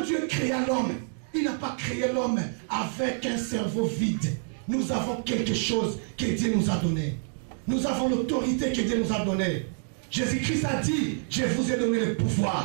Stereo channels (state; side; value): silent; left; digital silence